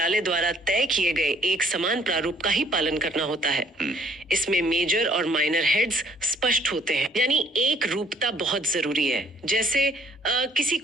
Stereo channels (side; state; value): both; normal; correlation 0.61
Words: द्वारा तय किए गए एक समान प्रारूप का ही पालन करना होता है। इसमें मेजर और माइनर हेड्स स्पष्ट होते हैं, यानी एक रूपता बहुत जरूरी है। जैसे किसी